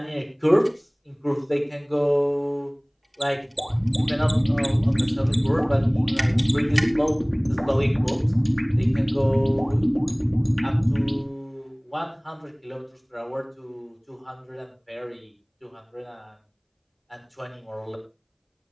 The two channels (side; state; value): both; identical; correlation 1.00